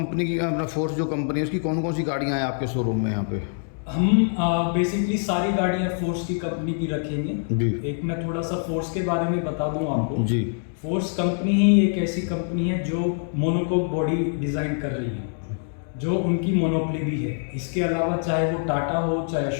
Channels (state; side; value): silent; right; digital silence